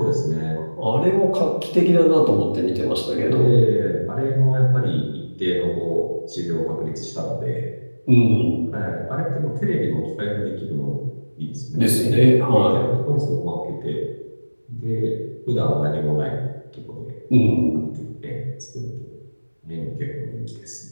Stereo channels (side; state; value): both; inverted; correlation -1.00